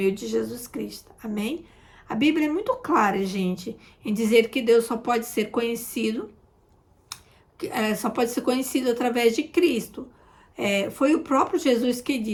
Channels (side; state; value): both; identical; correlation 1.00